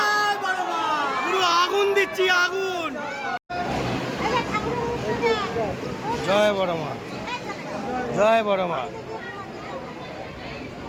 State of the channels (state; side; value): identical; both; correlation 1.00